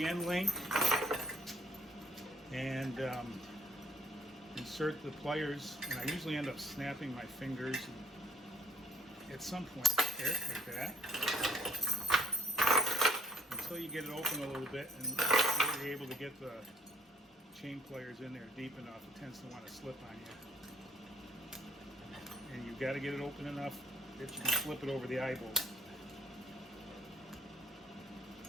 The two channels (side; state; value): both; normal; correlation 0.59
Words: end link and insert the pliers, and I usually end up snapping my fingers at some point there, like that, until you get it open a little bit and you're able to get the chain pliers in there deep enough. It tends to want to slip on you, and you've got to get it open enough that you can flip it over the eye bolt.